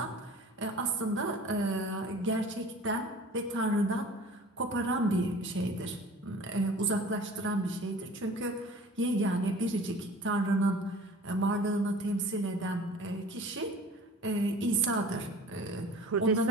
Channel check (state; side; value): normal; both; correlation 0.43